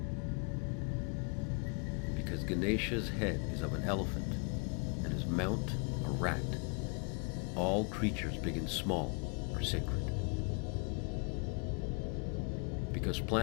Because Ganesha's head is of an elephant, and his mount a rat, all creatures big and small are sacred. Because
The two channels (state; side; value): quieter; right; 35.1 dB